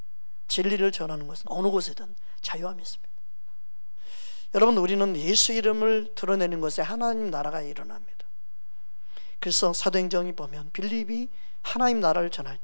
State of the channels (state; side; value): inverted; both; correlation -1.00